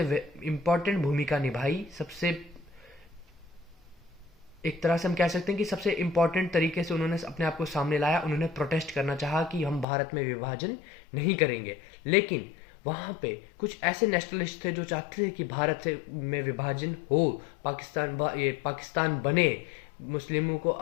इम्पोर्टेंट भूमिका निभाई। एक तरह से हम कह सकते हैं कि सबसे इम्पोर्टेंट तरीके से उन्होंने अपने आप को सामने लाया। उन्होंने प्रोटेस्ट करना चाहा कि हम भारत में विभाजन नहीं करेंगे, लेकिन वहाँ पे कुछ ऐसे नेशनलिस्ट थे जो चाहते थे कि भारत से में विभाजन हो, पाकिस्तान बने, मुस्लिमों को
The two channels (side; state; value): right; drops out; at 9.9 s